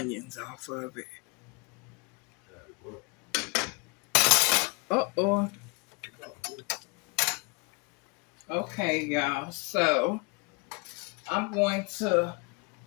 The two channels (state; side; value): quieter; right; 30.0 dB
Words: off of it. Uh-oh. Okay, y'all. So I'm going to